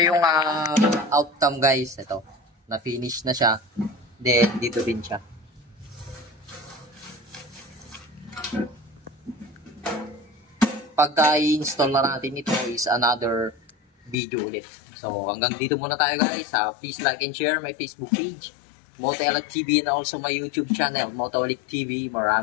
yung outcome guys. Ito, na-finish na siya. Then, dito din siya. Pagka i-install na natin ito is another video ulit. So, hanggang dito muna tayo guys. Please like and share my Facebook page, Motoelic TV, and also my YouTube channel, Motoelic TV.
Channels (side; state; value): right; drops out; at 14.2 s